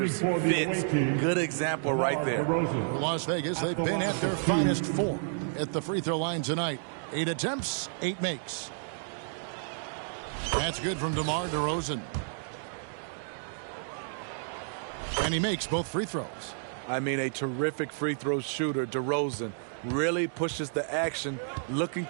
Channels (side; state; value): left; silent; digital silence